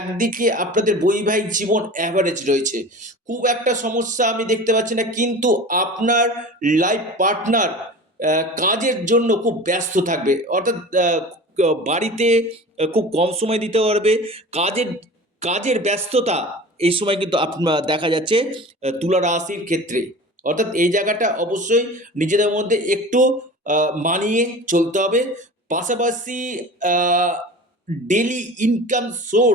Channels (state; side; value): normal; both; correlation 0.37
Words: আপনাদের বৈবাহিক জীবন অ্যাভারেজ রয়েছে, খুব একটা সমস্যা আমি দেখতে পাচ্ছি না, কিন্তু আপনার লাইফ পার্টনার কাজের জন্য খুব ব্যস্ত থাকবে, অর্থাৎ বাড়িতে খুব কম সময় দিতে পারবে। কাজের কাজের ব্যস্ততা এই সময় কিন্তু আপনার দেখা যাচ্ছে তুলা রাশির ক্ষেত্রে। অর্থাৎ এই জায়গাটা অবশ্যই নিজেদের মধ্যে একটু মানিয়ে চলতে হবে। পাশাপাশি ডেলি ইনকাম